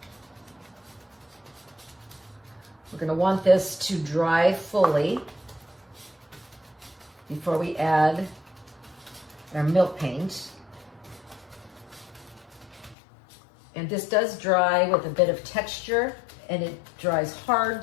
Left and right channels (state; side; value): drops out; right; at 13.0 s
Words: We're going to want this to dry fully before we add our milk paint. And this does dry with a bit of texture, and it dries